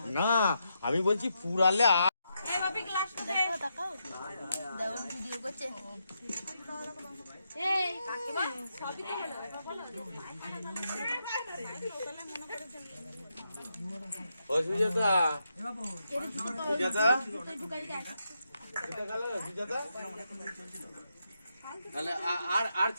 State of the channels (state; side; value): inverted; both; correlation -0.83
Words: না আমি বলছি পুরালে সুজাতা, সুজাতা, তাহলে আর